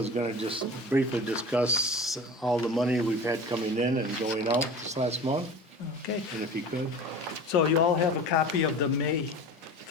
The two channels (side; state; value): both; normal; correlation 0.37